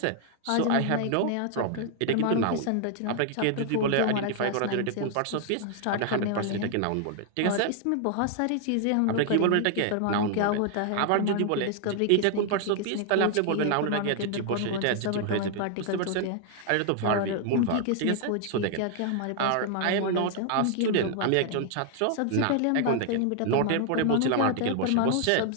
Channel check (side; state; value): both; different; correlation 0.00